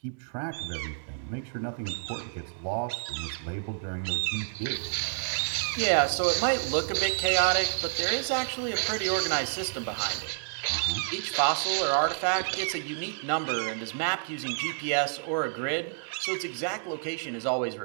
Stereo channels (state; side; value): silent; left; digital silence